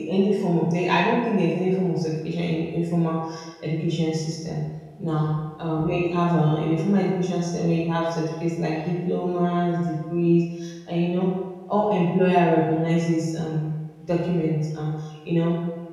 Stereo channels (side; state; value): both; identical; correlation 1.00